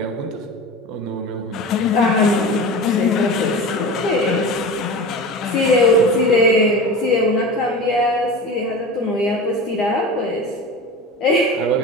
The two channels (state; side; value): normal; both; correlation 0.31